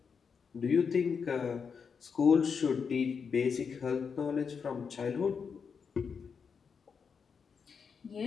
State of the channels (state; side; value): quieter; right; 6.0 dB